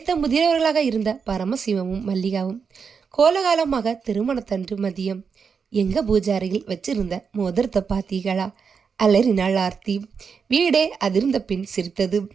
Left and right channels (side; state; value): left; quieter; 6.0 dB